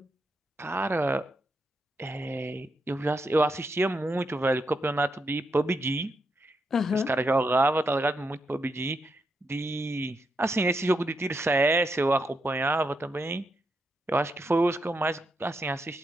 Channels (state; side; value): normal; both; correlation 0.83